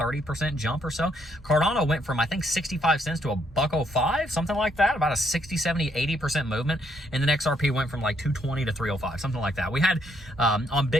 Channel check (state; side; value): normal; both; correlation 0.72